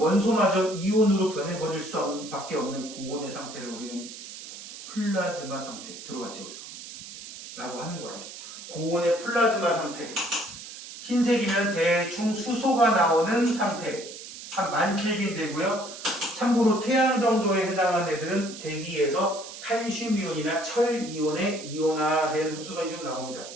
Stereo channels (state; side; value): noise; right; hiss, 13 dB below the sound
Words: 이온으로 변해버릴 수밖에 없는 고온의 상태를 우리는 플라즈마 상태, 들어봤죠? 여기서? 라고 하는 거라고. 고온의 플라즈마 상태. 흰색이면 대충 수소가 나오는 상태. 한 10,000켈빈 되고요. 참고로 태양 정도에 해당하는 애들은 대기에서 칼슘 이온이나 철 이온의 이온화된 흡수선이 좀 나옵니다.